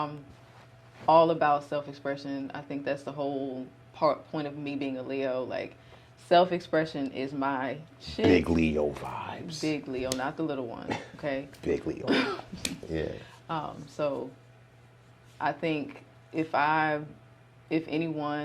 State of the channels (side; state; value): both; identical; correlation 1.00